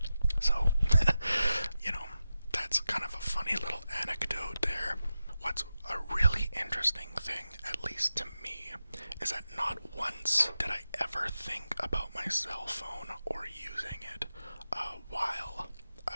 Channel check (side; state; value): both; inverted; correlation -0.92